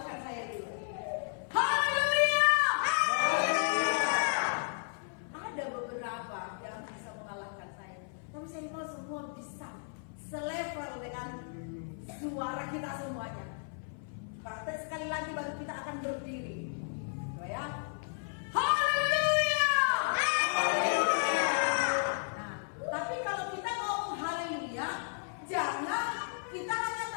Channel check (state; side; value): silent; right; 55 dB below the other